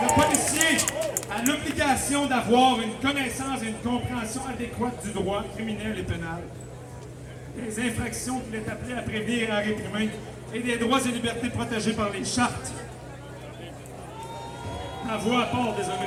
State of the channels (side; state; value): both; identical; correlation 1.00